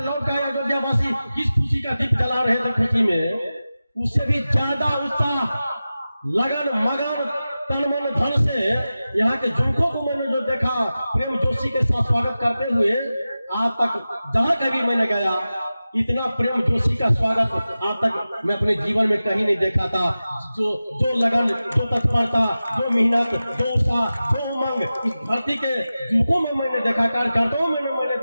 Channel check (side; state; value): both; inverted; correlation -0.95